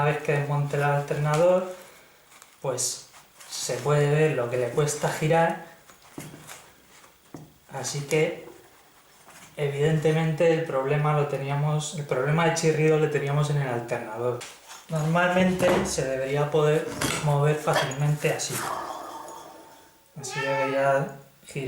vez que desmonte el alternador, pues se puede ver lo que le cuesta girar, así que evidentemente el problema de chirrido lo teníamos en el alternador. Normalmente se debería poder mover fácilmente así. Así debería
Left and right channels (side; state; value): both; identical; correlation 1.00